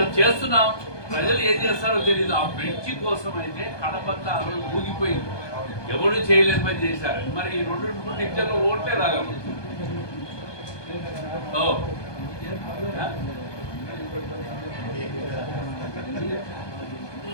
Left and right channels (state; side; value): late; right; 1.2 ms